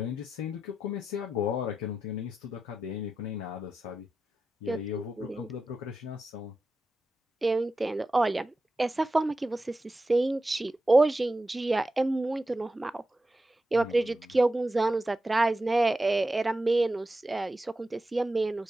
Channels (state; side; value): normal; both; correlation 0.91